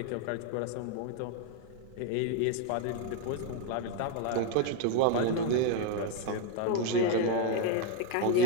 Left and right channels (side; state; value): both; different; correlation 0.00